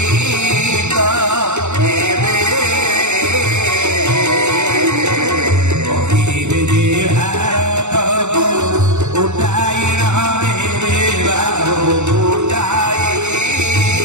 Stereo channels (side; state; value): left; late; 0.83 ms